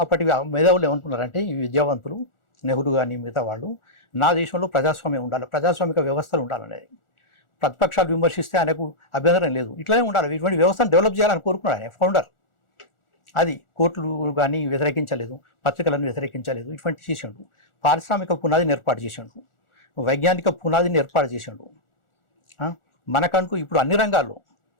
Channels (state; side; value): late; right; 1.4 ms